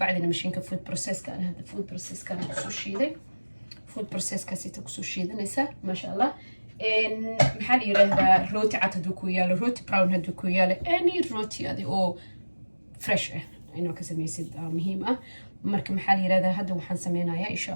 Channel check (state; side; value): inverted; both; correlation -1.00